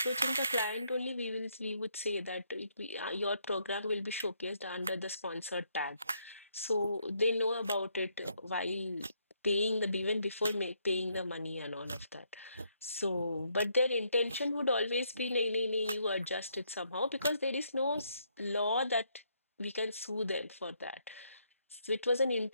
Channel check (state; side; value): inverted; both; correlation -0.73